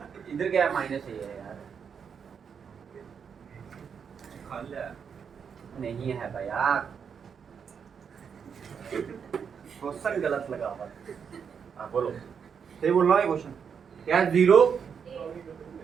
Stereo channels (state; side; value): quieter; left; 6.8 dB